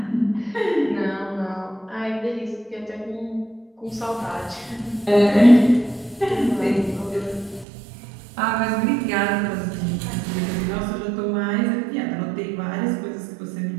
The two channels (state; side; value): drops out; left; at 7.7 s